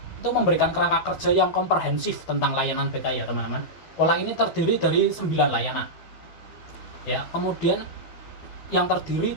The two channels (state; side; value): late; right; 12 ms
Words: itu memberikan kerangka kerja yang komprehensif tentang layanan BK ya teman-teman. Pola ini terdiri dari 9 layanan. Ya, kemudian yang terdiri